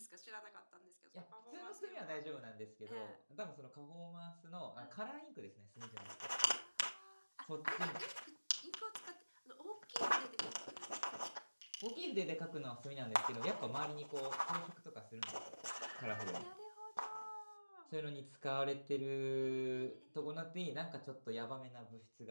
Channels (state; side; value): inverted; both; correlation -1.00